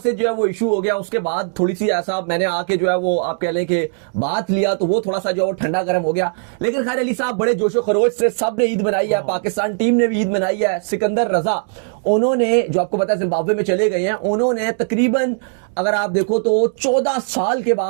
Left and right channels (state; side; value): silent; left; digital silence